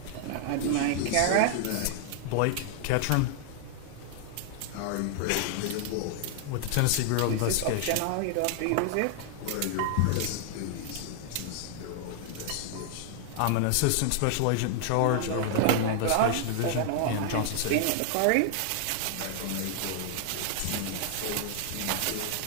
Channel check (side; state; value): both; different; correlation 0.00